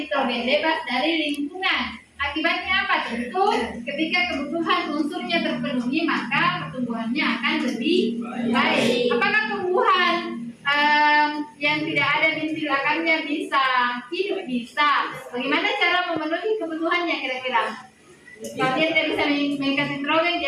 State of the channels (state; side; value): identical; both; correlation 1.00